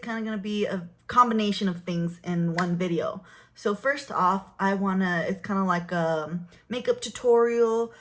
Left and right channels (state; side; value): identical; both; correlation 1.00